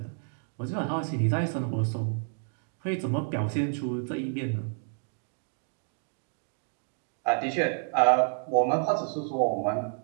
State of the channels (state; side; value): silent; left; 58 dB below the other